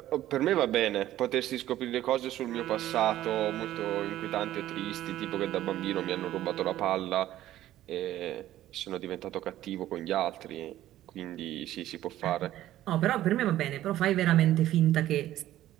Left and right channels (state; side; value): quieter; left; 13.6 dB